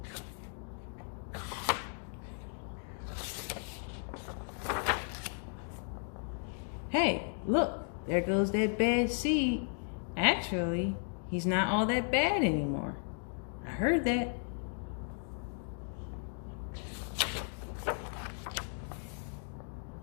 Hey, look, there goes that bad seed. Actually, he's not all that bad anymore. I heard that.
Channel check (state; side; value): silent; right; 54 dB below the other